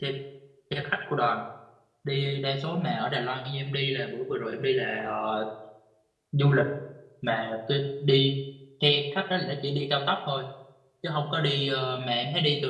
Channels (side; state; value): both; identical; correlation 1.00